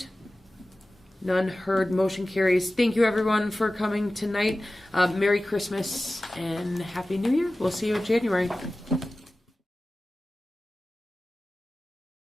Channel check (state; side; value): normal; both; correlation 0.96